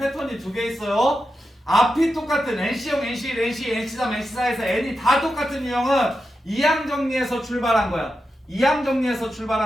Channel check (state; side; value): normal; both; correlation 0.89